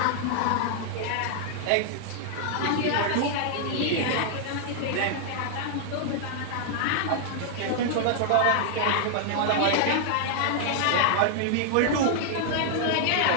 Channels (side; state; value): both; different; correlation -0.01